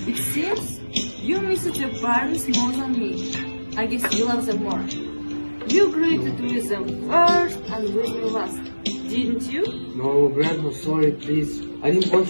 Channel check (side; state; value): both; inverted; correlation -1.00